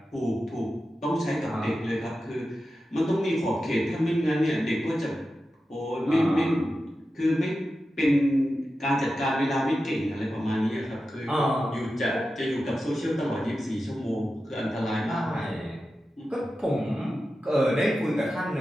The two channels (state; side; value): normal; both; correlation 0.92